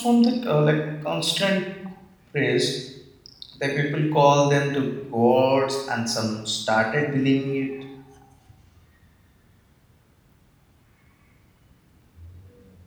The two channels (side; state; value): both; identical; correlation 1.00